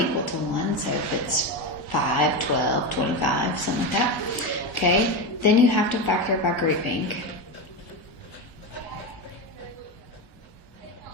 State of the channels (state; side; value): late; right; 1.4 ms